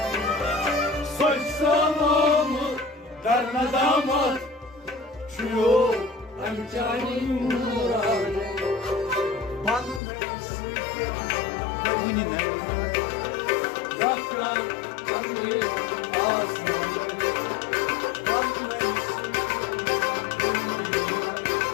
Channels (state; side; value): drops out; right; at 10.0 s